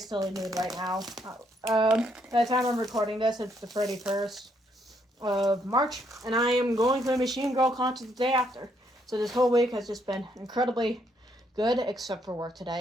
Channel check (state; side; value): normal; both; correlation 0.73